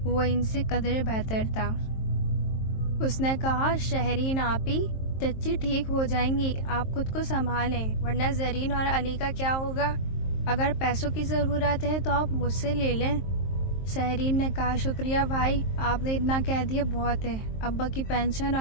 وہ ان سے قدرے بہتر تھا۔ اس نے کہا، شہرین آپی، چچی ٹھیک ہو جائیں گی، آپ خود کو سنبھالیں، ورنہ زرین اور علی کا کیا ہوگا؟ اگر پیسوں کی ضرورت ہے تو آپ مجھ سے لے لیں۔ شہرین نے کہا، شکریہ بھائی، آپ نے اتنا کہہ دیا بہت ہے، ابا کی پینشن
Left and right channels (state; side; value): late; right; 23 ms